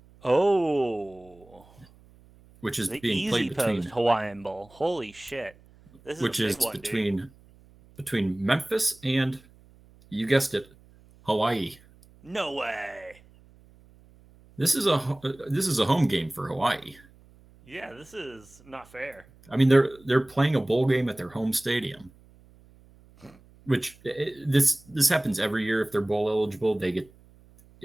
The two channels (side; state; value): right; noise; hum, 27 dB below the sound